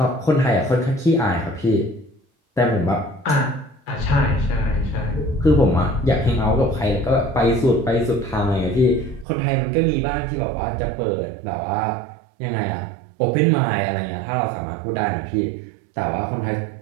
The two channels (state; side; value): drops out; left; at 9.2 s